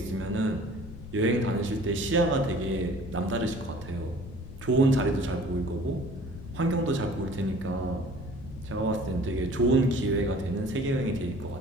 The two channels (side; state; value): left; noise; rumble, 13 dB below the sound